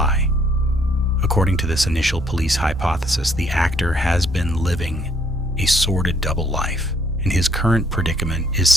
According to this initial police hypothesis, the actor has been living a sordid double life, and his current predicament is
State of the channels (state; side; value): normal; both; correlation 0.65